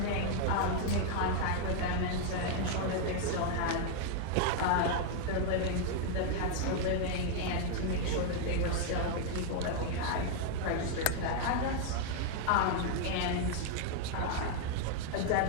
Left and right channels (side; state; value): both; different; correlation 0.00